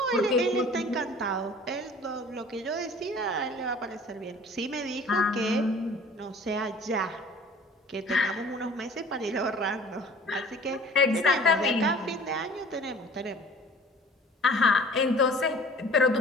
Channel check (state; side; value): normal; both; correlation 0.48